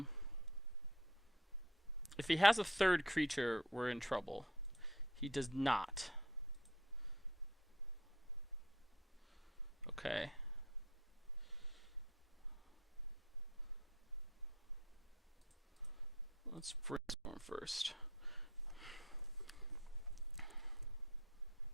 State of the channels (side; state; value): both; normal; correlation 0.56